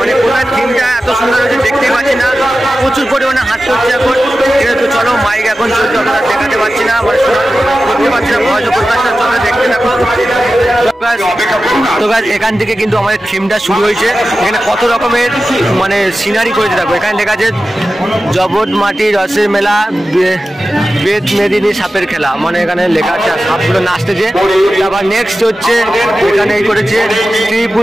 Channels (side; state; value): both; normal; correlation 0.94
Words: কোথায় থিমটা এত সুন্দর হয়েছে দেখতেই পাচ্ছি না। প্রচুর পরিমাণে হাঁটতে হচ্ছে এখন। ঠিক আছে, তো চলো মাইক এখন চলছে, আমরা দেখাতে পারছি না, মানে করতে পারছি না, ভয় প্রকাশটা চলে দেখতে থাকো। তো গাছ এখান থেকে কিন্তু আমাদের থিমটা শুরু হয়েছে। এখানে কত রকমের মানে সিনারি করেছে দেখো। এখানে লেখা আছে জবট মাটি রসের মেলা, বেদ মেদিনী সাপের খেলা, মানে এখানে লেখা আছে সাপগুলো নাচতেছে। তারপর নেক্সট হচ্ছে এখানে এই করেছে স্ত্রী